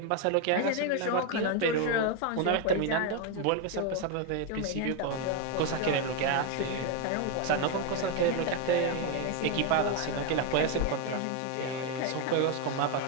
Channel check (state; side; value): different; both; correlation 0.01